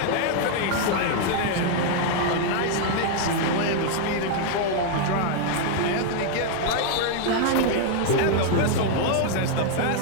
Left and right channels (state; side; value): different; both; correlation 0.00